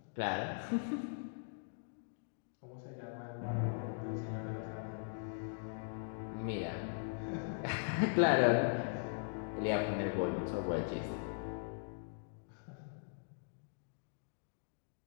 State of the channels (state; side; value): silent; right; digital silence